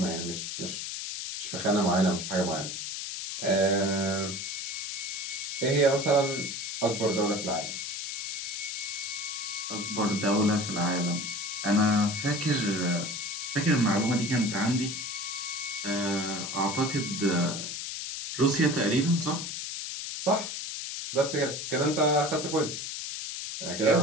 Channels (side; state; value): left; noise; hiss, 5 dB below the sound